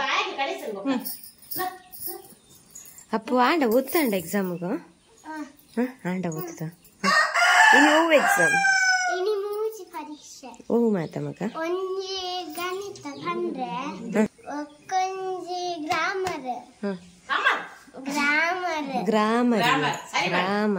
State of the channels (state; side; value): identical; both; correlation 1.00